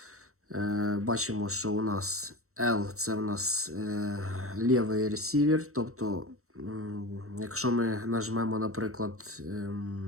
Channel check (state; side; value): late; left; 0.64 ms